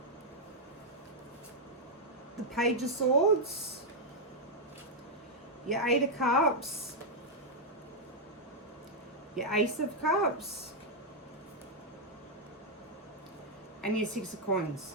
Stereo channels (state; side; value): normal; both; correlation -0.03